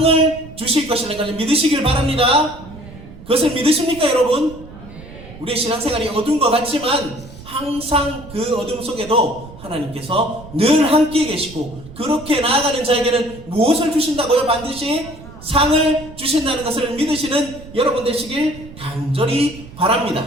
주실 것이라는 것을 믿으시길 바랍니다. 그것을 믿으십니까, 여러분? 우리의 신앙생활이 어두운 것 같지만 항상 그 어둠 속에도 하나님께서 늘 함께 계시고, 그렇게 나아가는 자에게는 무엇을 주신다고요? 반드시 상을 주신다는 것을 믿으시는 여러분 되시길 간절히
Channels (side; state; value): right; noise; rumble, 17 dB below the sound